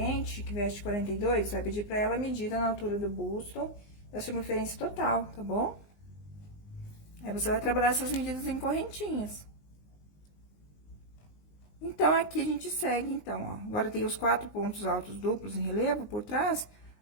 que veste 42, você vai pedir para ela a medida na altura do busto, da circunferência total, tá bom? Aí, você vai trabalhar essas medidas em correntinhas. Então, aqui a gente segue, então, ó. Agora, tem os 4 pontos altos duplos em relevo por trás,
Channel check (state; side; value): late; right; 19 ms